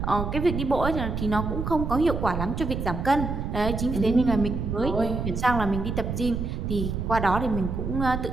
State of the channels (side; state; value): right; noise; rumble, 3 dB below the sound